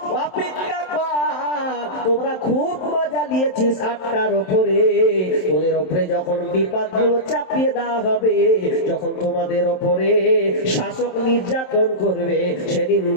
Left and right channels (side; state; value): right; late; 27 ms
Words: অপেক্ষা কর, তোমরা খুব মজা নিয়েছিস 8টার উপরে, তোদের উপরে যখন বিপদগুলো চাপিয়ে দেওয়া হবে, যখন তোমাদের উপরে শাসক নির্যাতন করবে, সেদিন